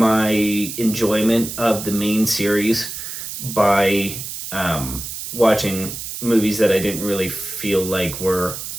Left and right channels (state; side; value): noise; right; hiss, 8 dB below the sound